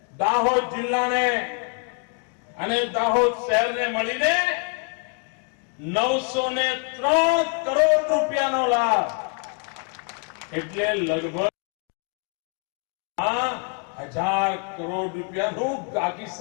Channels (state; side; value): quieter; right; 36.3 dB